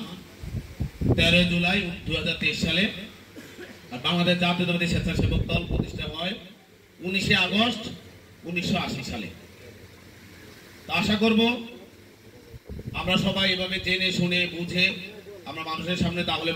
13 জুলাই 2023 সালে। আর বাংলাদেশ জাতীয়তাবাদী স্বেচ্ছাসেবক দল প্রতিষ্ঠা হয় 19 আগস্ট 1980 সালে। আশা করব আমরা সবাই এভাবে জেনে শুনে বুঝে আমরা মানুষের সামনে তাহলে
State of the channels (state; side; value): identical; both; correlation 1.00